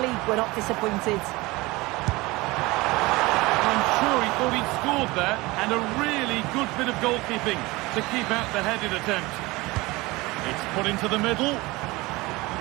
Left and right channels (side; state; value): left; quieter; 21.9 dB